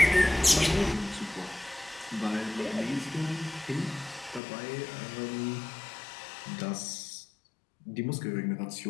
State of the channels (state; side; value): drops out; right; at 4.4 s